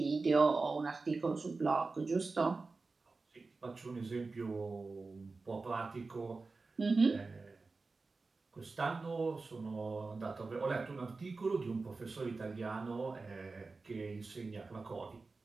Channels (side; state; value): left; quieter; 3.9 dB